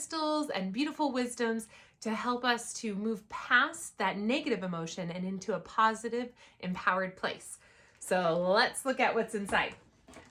and beautiful wisdoms to help us to move past that negative emotion and into a positive, empowered place. So let's look at what's inside.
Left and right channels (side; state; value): both; identical; correlation 1.00